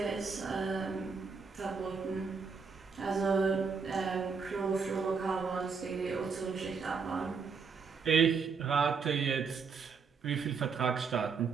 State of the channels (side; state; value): left; quieter; 5.4 dB